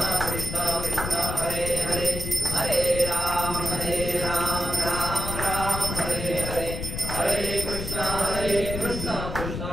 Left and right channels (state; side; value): noise; left; rumble, 5 dB below the sound